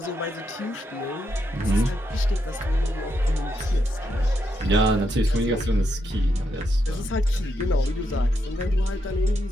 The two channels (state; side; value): normal; both; correlation 0.81